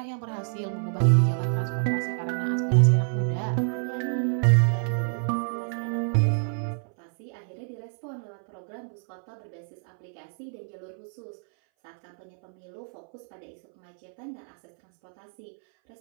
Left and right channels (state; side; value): silent; left; 60 dB below the other